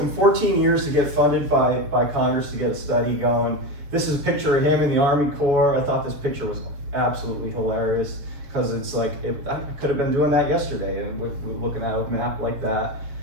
14 years to get funded by Congress to get a study going. This is a picture of him in the Army Corps. I thought this picture was absolutely hilarious because it's like, I could have been doing that yesterday and looking at a map like that.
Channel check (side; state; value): left; late; 7.0 ms